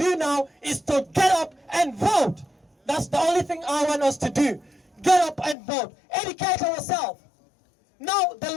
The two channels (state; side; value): drops out; right; at 5.6 s